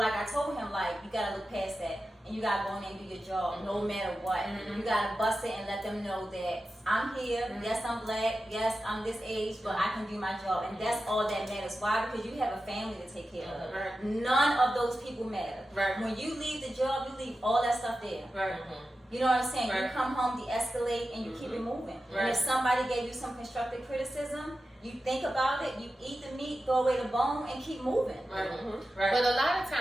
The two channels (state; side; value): normal; both; correlation 0.92